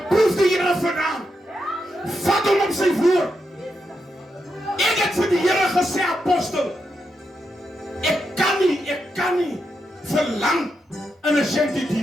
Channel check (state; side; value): normal; both; correlation 0.84